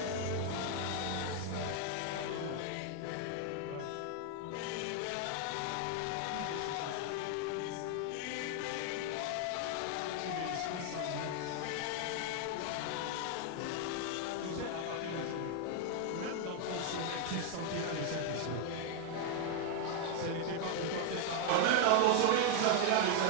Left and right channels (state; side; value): different; both; correlation 0.00